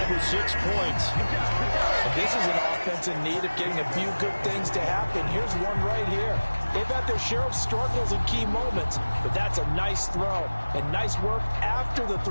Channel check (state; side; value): inverted; both; correlation -1.00